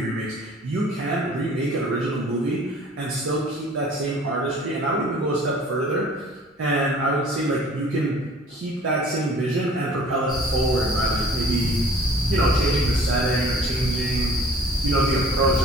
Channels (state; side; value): normal; both; correlation 0.50